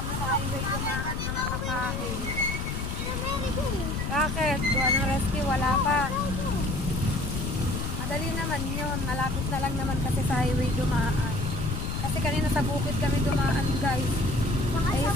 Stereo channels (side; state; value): left; noise; rumble, 3 dB below the sound